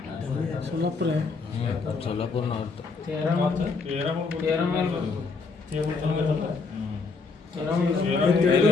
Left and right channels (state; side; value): quieter; right; 4.4 dB